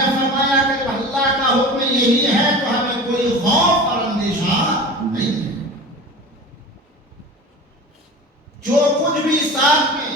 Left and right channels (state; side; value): normal; both; correlation 0.35